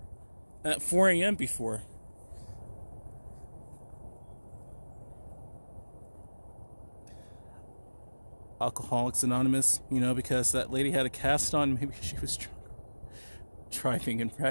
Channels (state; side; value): inverted; both; correlation -1.00